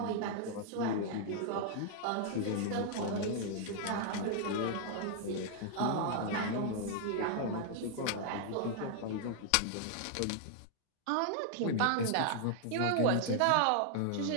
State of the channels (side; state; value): both; different; correlation -0.01